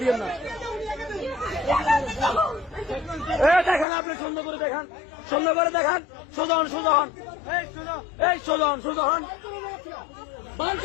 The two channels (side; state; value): right; drops out; at 3.9 s